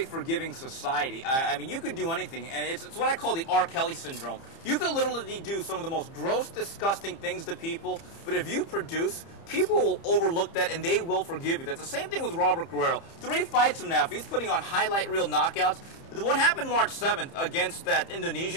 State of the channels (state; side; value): late; right; 30 ms